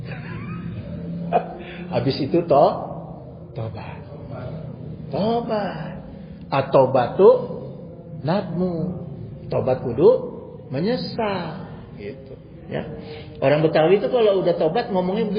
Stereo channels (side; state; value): both; identical; correlation 1.00